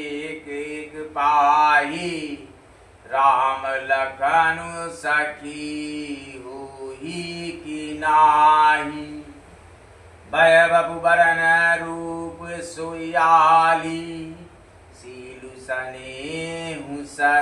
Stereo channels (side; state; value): both; identical; correlation 1.00